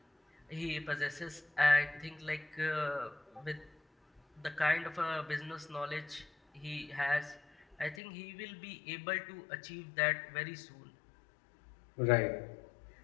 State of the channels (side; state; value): right; drops out; at 8.0 s